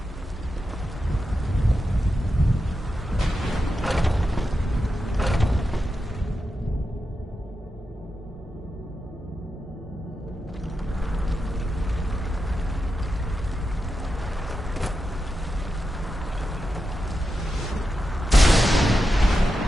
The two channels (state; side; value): normal; both; correlation 0.89